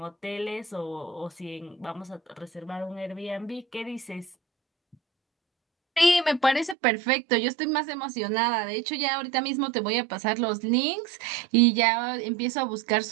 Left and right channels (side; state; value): left; drops out; at 6.8 s